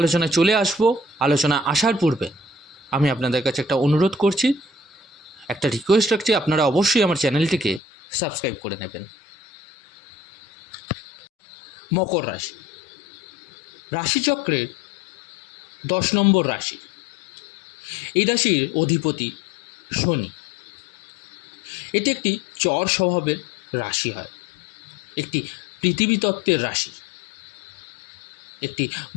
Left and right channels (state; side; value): drops out; right; at 7.8 s